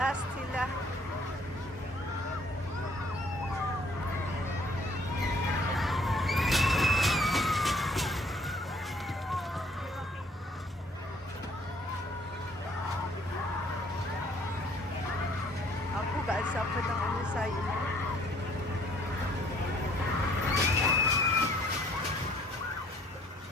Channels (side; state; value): both; normal; correlation 0.60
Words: sila. Ako kaasa pa ng ano sa'yo.